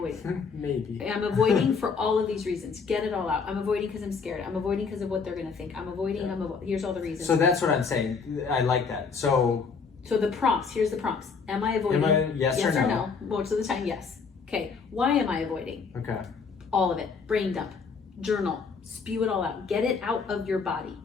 Maybe. I'm avoiding for all of these reasons. Get it all out. I'm avoiding because I'm scared. I'm avoiding because of what they're gonna think. I'm avoiding, here's all the reasons. So that's what I'm saying. I like that. So the prompts, here's the prompts. Am I avoiding? Yes or no? Most of the time, yes. Okay, why am I avoiding? Okay. All of it. Brain dump. Journal. Spew it all out. Get it out of your body.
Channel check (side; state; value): right; quieter; 5.3 dB